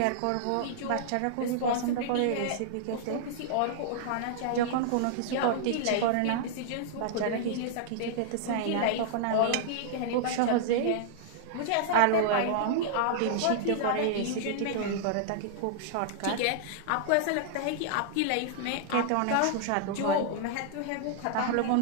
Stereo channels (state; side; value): different; both; correlation -0.01